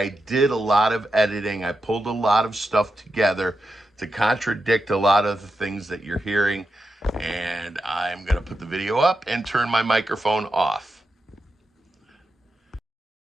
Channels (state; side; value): normal; both; correlation 0.88